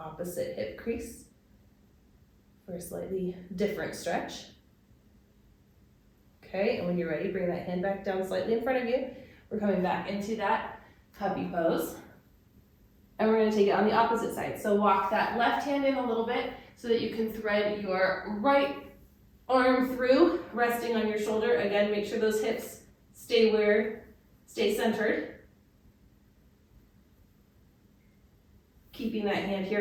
hip crease for a slightly different stretch. Okay, and when you're ready, bring that hand back down slightly in front of you. We're coming back into that puppy pose. And we're going to take it on the opposite side. So walk that left hand in a little bit so that you can thread your right arm through, resting on your shoulder. Again, make sure those hips stay centered. Keeping that hand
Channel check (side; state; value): both; identical; correlation 1.00